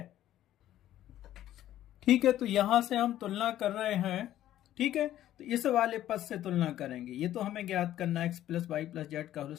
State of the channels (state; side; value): quieter; right; 12.8 dB